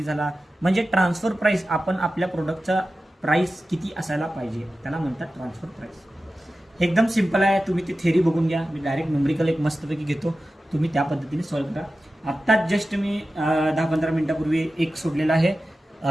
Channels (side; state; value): both; normal; correlation 0.94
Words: झाला, म्हणजे ट्रान्सफर प्राईस आपण आपल्या प्रोडक्टचा प्राईस किती असायला पाहिजे त्याला म्हणतात ट्रान्सफर प्राईस. एकदम सिंपल आहे, तुम्ही ती थेरी बघून घ्या. मी डायरेक्ट न्यूमरिकल एक मस्तपैकी घेतो, तुम्ही त्या पद्धतीने सॉल्व्ह करा. आत्ताच जस्ट मी 10-15 मिनिटापूर्वी एक सोडलेला आहे